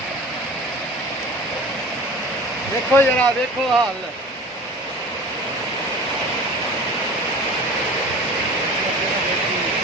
ਦੇਖੋ ਜਰਾ ਦੇਖੋ ਹਾਲ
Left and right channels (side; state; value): both; normal; correlation 0.40